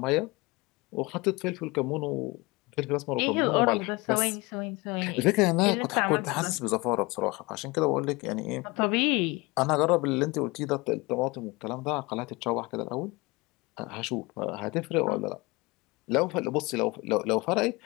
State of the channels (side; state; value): right; quieter; 24.1 dB